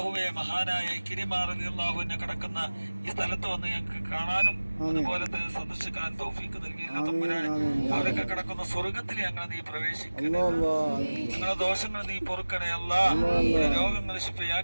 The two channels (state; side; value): inverted; both; correlation -1.00